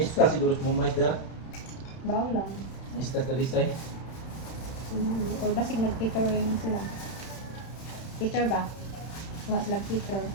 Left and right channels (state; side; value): late; right; 31 ms